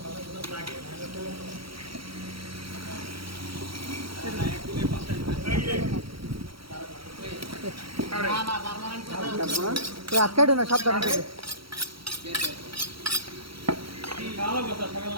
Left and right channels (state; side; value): late; left; 0.75 ms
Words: আটকাইটো না সাবধান থেকে